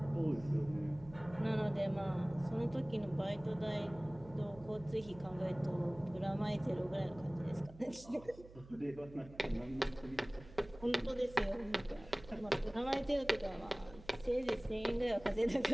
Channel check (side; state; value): right; noise; hum, 19 dB below the sound